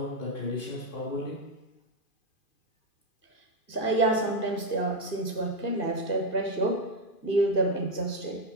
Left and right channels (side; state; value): right; late; 2.5 ms